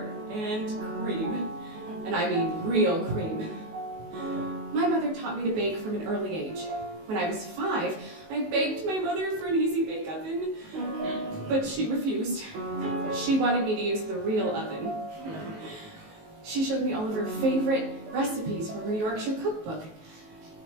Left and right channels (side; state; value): left; late; 19 ms